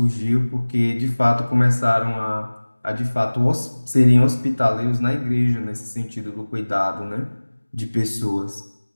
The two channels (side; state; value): both; inverted; correlation -1.00